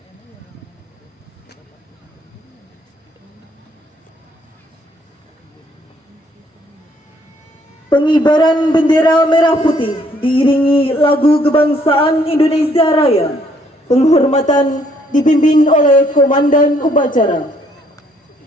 Pengibaran bendera merah putih diiringi lagu kebangsaan Indonesia Raya. Penghormatan dipimpin oleh Komandan Upacara.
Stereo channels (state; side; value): normal; both; correlation 0.66